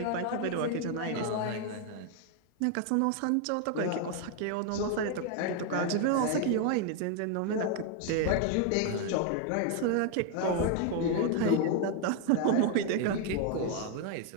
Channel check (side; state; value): both; different; correlation 0.00